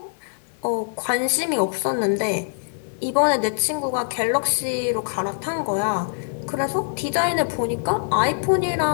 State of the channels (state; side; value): silent; right; 62 dB below the other